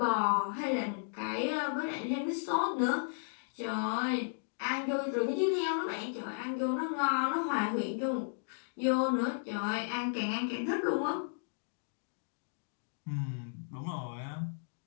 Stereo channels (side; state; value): right; silent; digital silence